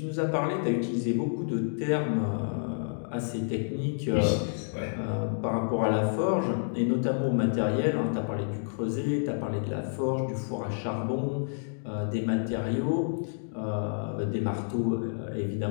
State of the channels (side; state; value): right; silent; digital silence